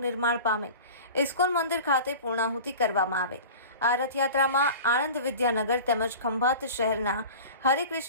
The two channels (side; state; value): both; inverted; correlation -0.37